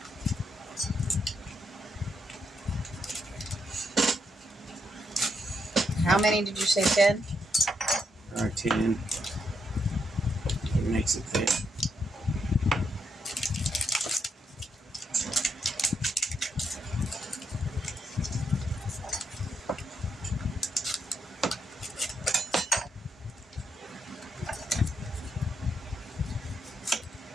How many did you say, Ted? Or 10. It makes it thick.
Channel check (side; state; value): both; normal; correlation 0.79